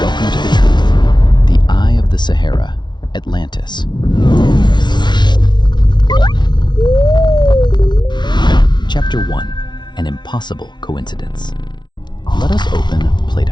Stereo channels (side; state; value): right; late; 0.21 ms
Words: to the truth. The Eye of the Sahara, Atlantis. Chapter 1. An impossible coincidence. Let us open